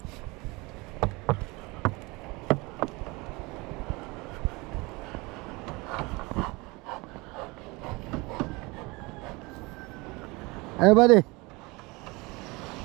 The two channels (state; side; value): quieter; left; 24.8 dB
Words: Ano ba di?